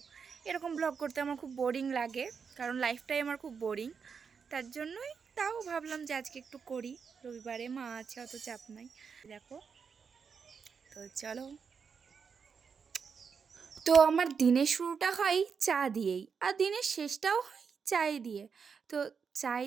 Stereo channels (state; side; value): quieter; left; 6.1 dB